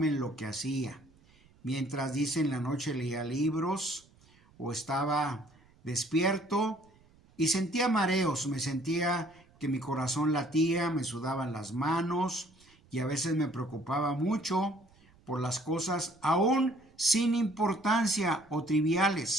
en lo que hacía. Mientras, dice, en la noche leía libros o estaba despierto y sentía mareos, me sentía que mi corazón latía, me sudaban las manos y a veces me preocupaba mucho por las cosas aún sin importancia o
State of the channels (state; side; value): noise; right; rumble, 29 dB below the sound